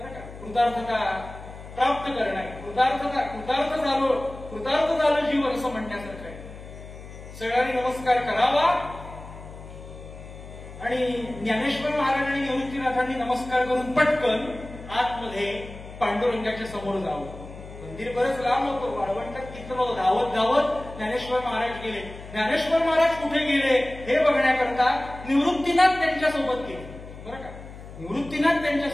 का? कृतार्थता प्राप्त करणं, कृतार्थ झालं जीवन असं म्हणण्यासारखं आहे. सगळ्यांनी नमस्कार करावा. आणि ज्ञानेश्वर महाराज आणि निवृत्तीनाथांनी नमस्कार करून पटकन आतमध्ये पांडुरंगाच्या समोर जावं. मंदिर बरंच लांब होतं, वाळवंटात किती धावत धावत ज्ञानेश्वर महाराज गेले. ज्ञानेश्वर महाराज कुठे गेले हे बघण्याकरता निवृत्तीनाथ त्यांच्यासोबत गेले. बरं का? निवृत्तीनाथ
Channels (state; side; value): noise; left; hum, 15 dB below the sound